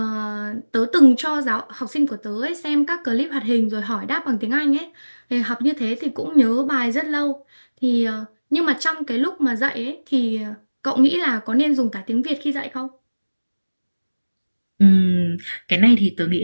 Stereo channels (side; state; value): both; inverted; correlation -1.00